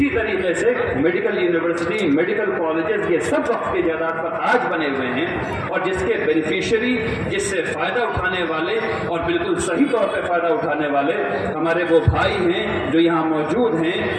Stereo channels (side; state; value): both; identical; correlation 1.00